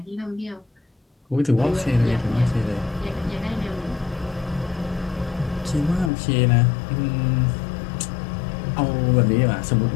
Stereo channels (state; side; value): drops out; right; at 6.1 s